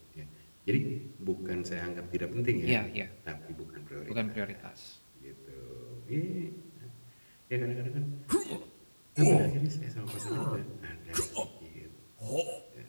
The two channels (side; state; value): both; inverted; correlation -1.00